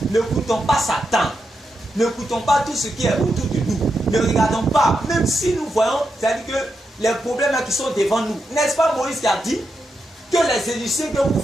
Ne coûtons pas Satan. Ne coûtons pas tout ce qui est autour de nous. Ne regardons pas. Même si nous voyons, c'est-à-dire que les problèmes qui sont devant nous. N'est-ce pas Moïse qui a dit que les Égyptiens que vous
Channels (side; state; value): both; normal; correlation 0.85